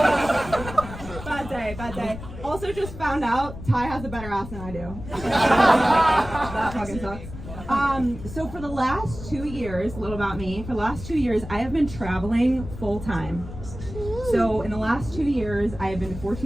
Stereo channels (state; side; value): noise; left; rumble, 11 dB below the sound